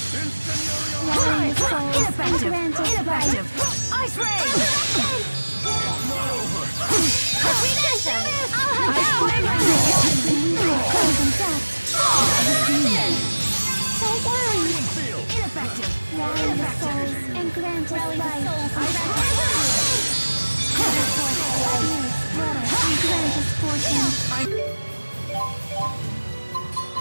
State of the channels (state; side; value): inverted; both; correlation -1.00